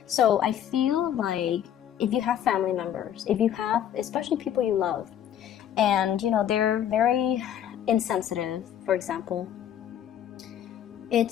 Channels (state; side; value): quieter; right; 10.2 dB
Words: So I feel like if you have family members, if you have, especially people you love, and, you know, they're very insensitive, for example,